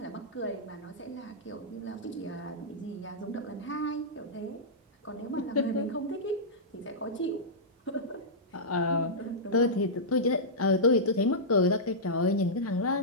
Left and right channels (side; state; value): both; normal; correlation -0.12